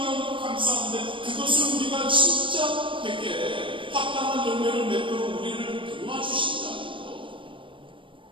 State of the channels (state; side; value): late; left; 0.25 ms